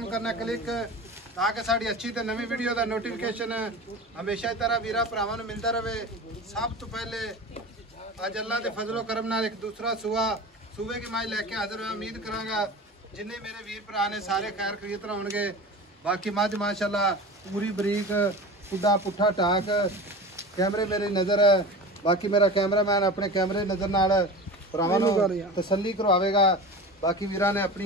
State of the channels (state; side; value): normal; both; correlation 0.32